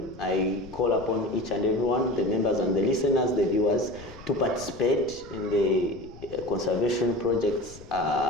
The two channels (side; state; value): left; noise; rumble, 19 dB below the sound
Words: I call upon each and everyone, the members and the listeners, the viewers, to participate in the conservation projects